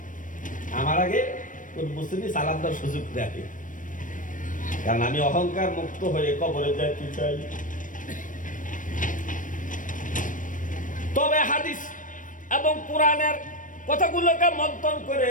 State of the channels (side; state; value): right; late; 0.38 ms